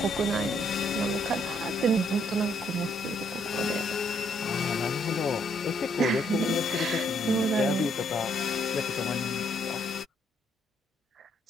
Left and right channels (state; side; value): normal; both; correlation 0.70